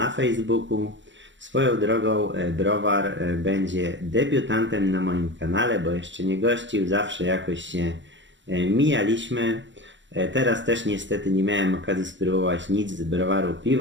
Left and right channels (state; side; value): late; left; 0.54 ms